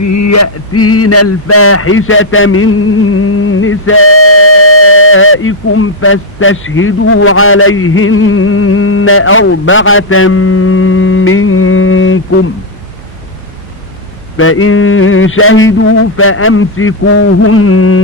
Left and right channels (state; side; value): normal; both; correlation -0.01